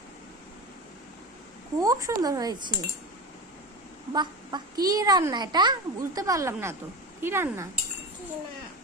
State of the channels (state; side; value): normal; both; correlation 0.25